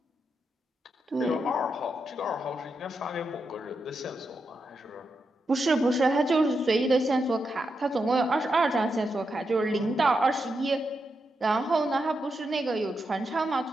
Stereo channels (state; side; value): normal; both; correlation 0.85